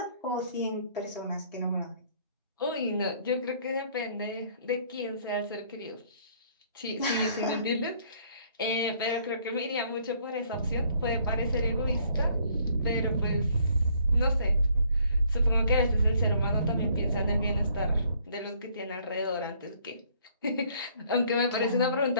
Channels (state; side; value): inverted; both; correlation -0.62